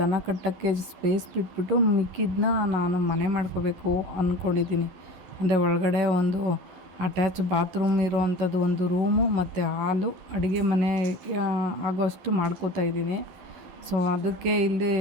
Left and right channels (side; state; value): left; late; 11 ms